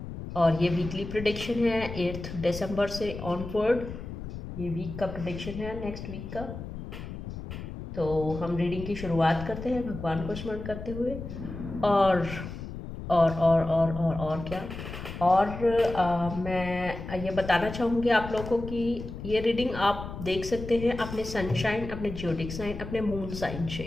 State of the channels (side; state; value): left; noise; rumble, 9 dB below the sound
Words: और ये वीकली प्रिडिक्शन है 8 दिसंबर से ऑनवर्ड। ये वीक का प्रिडिक्शन है, नेक्स्ट वीक का। तो हम रीडिंग की शुरुआत करते हैं भगवान को स्मरण करते हुए। और और क्या। और मैं ये बताना चाहूँगी आप लोगों को कि ये रीडिंग आप देख सकते हैं अपने सनशाइन, अपने ज्योडिक साइन, अपने मून साइन से।